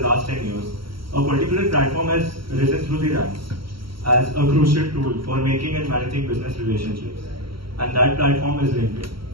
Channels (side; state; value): left; late; 0.74 ms